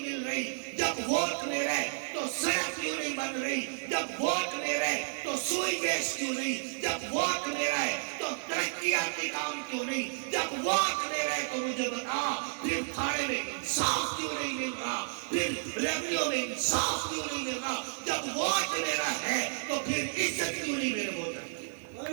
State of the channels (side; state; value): left; silent; 57 dB below the other